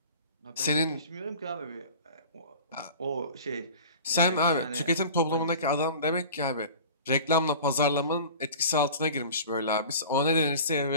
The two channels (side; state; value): both; inverted; correlation -0.40